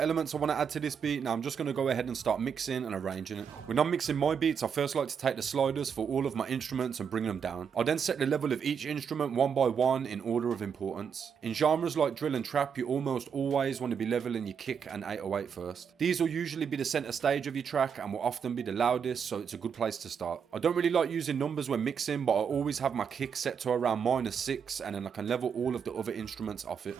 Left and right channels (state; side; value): quieter; left; 7.0 dB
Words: I want to add to this beat. Now I'm just going to go ahead and start mixing and arranging it. When I'm mixing my beats, I first like to take the sliders for all of my instruments and bring them down. I then set the level of each instrument one by one in order of importance. In genres like drill and trap, you almost always want to be leveling your kick and 808 first. These will usually be the center stage of your track and will often be the loudest, so it's a good place to start. I don't really like using numbers when mixing, but I always have my kick set to around -6, and then I can level all of the other instruments off it.